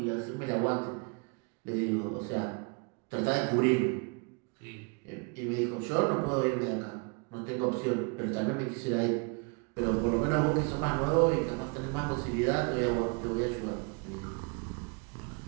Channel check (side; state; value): left; quieter; 33.4 dB